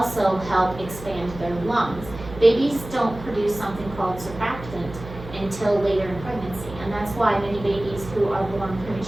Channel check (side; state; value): right; noise; hum, 14 dB below the sound